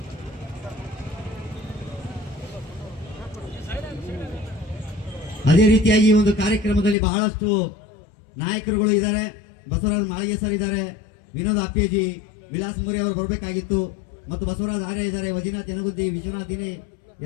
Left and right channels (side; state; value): right; drops out; at 7.0 s